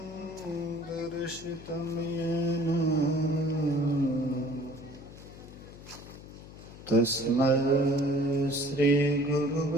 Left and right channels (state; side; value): noise; left; hum, 16 dB below the sound